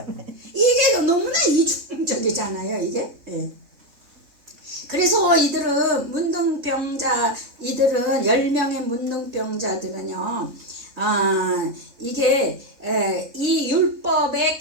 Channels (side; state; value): left; late; 3.3 ms